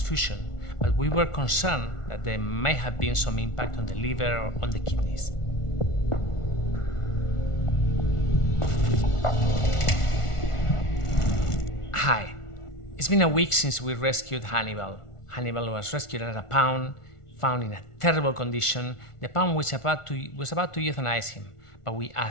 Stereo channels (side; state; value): right; late; 1.4 ms